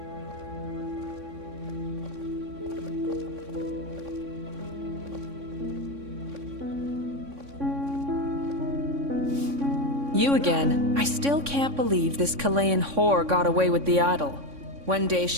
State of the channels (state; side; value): late; left; 3.6 ms